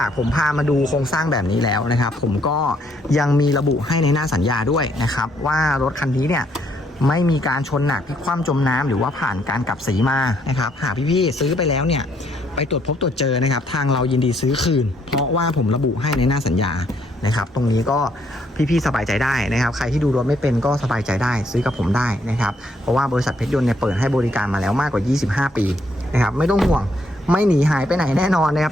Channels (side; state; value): both; normal; correlation 0.70